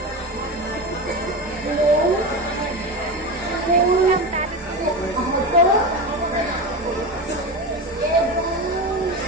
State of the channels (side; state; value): both; normal; correlation 0.22